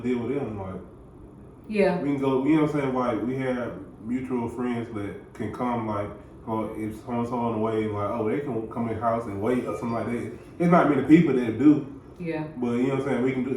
deal with them. Like, yeah, we can go. You know what I'm saying? Like, we have mutual friends that can come. Like, or if someone's on the way, like, oh, they can come in the house and wait or something like that. There's not many people that do. Yeah. But you know what I'm saying? We can do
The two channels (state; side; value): identical; both; correlation 1.00